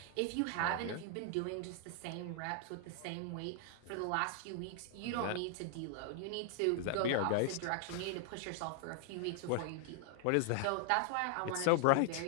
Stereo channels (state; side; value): different; both; correlation 0.00